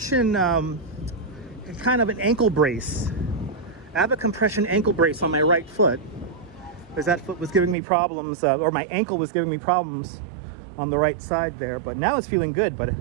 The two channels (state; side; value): drops out; left; at 7.8 s